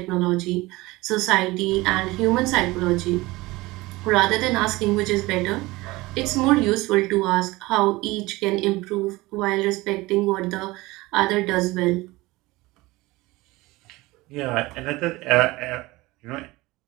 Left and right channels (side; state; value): left; quieter; 20.7 dB